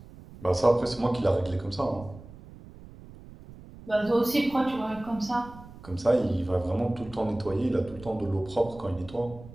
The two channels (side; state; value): right; noise; rumble, 18 dB below the sound